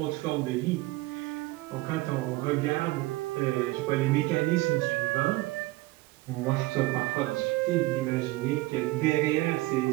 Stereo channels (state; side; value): quieter; left; 20.3 dB